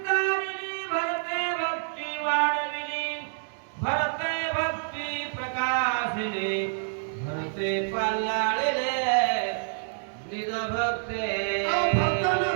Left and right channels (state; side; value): silent; left; digital silence